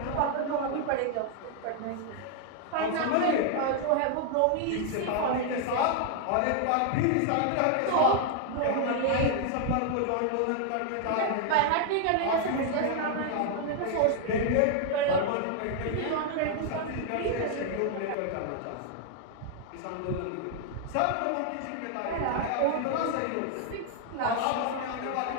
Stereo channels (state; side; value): different; both; correlation 0.00